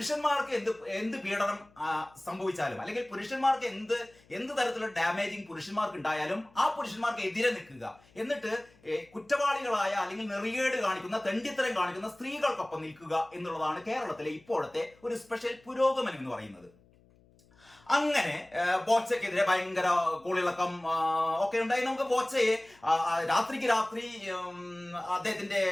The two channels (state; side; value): noise; left; hum, 29 dB below the sound